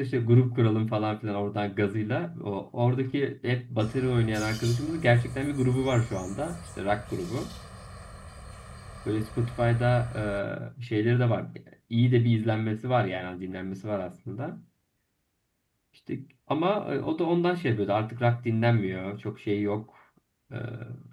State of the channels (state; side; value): identical; both; correlation 1.00